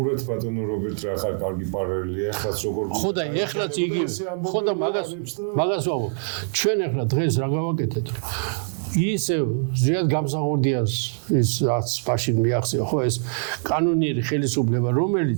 ბატონო რობერტ რა ხარ კარგი პარალელია ახლაც როგორ ხო და ეხლა მაგას ვამბობ. ჩვენ ეხლა დღეს რა გავაკეთეთ ისე ზიად გამსახურდიას ის რაც მაშინ მიახსევა ხო ეს კანონიერი ხელისუფლება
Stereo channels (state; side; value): silent; left; digital silence